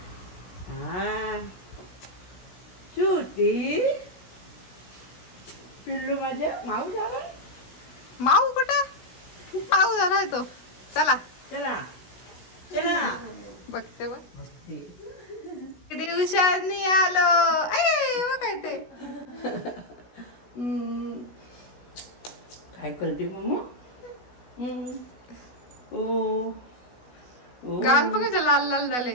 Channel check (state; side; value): late; right; 16 ms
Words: श्रुती पिल्लू माझ्या माऊ झाला. माऊ कुठं? माऊ झालाय तो. चला चला चला बघते बघ. दिवसांनी आलो. मग काय ते काय करते मम्मा? ओ गाल बघा लाल लाल झाले.